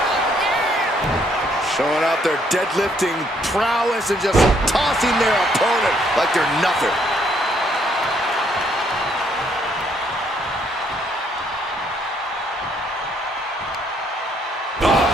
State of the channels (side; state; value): both; normal; correlation 0.69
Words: Showing out their deadlifting prowess and just tossing their opponent like they're nothing.